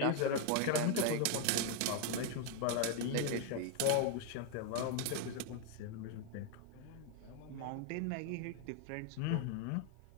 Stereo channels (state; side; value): different; both; correlation 0.01